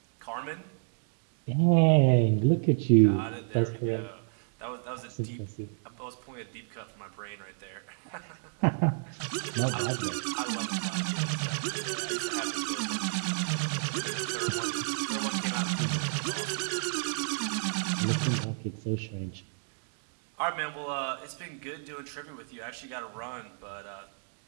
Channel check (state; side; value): silent; left; digital silence